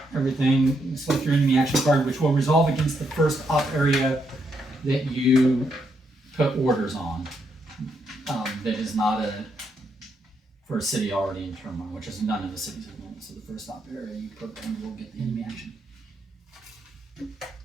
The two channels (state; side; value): normal; both; correlation 0.78